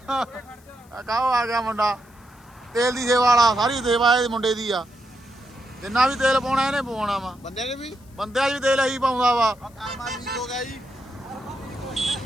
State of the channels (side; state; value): left; noise; hiss, 29 dB below the sound